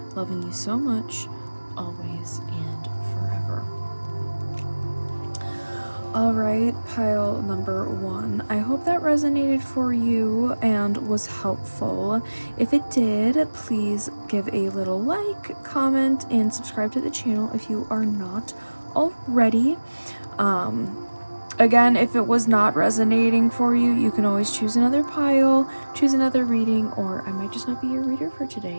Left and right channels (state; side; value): inverted; both; correlation -1.00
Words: Loving you so much, always and forever. Alright, pile number 1. I hope that resonated for you and was helpful. If it did, please give a little like, comment, and subscribe to the channel if you are not already. Again, if it was not resonating for you, you can always choose another pile, choose another reading, or I might just not be your reader for